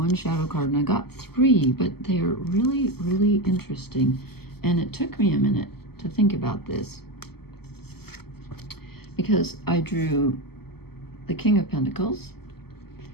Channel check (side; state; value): right; late; 0.96 ms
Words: shadow card, and I got 3, but they are really, really interesting. And it took me a minute to think about this, because I drew the King of Pentacles,